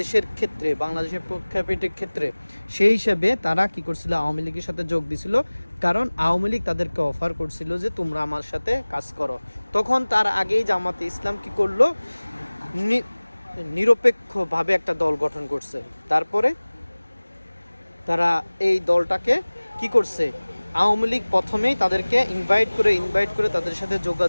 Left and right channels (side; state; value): both; inverted; correlation -1.00